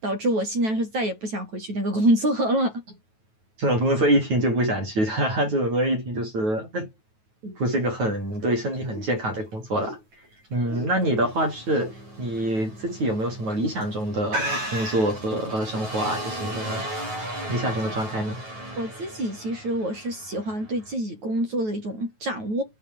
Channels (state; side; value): late; left; 9.3 ms